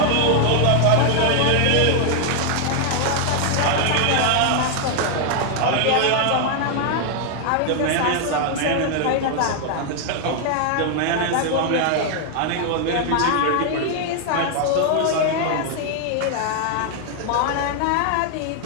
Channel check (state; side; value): different; both; correlation 0.00